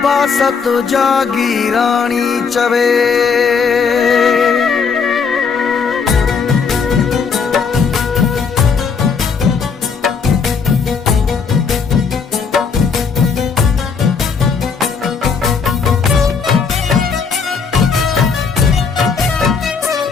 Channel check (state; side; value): quieter; right; 5.6 dB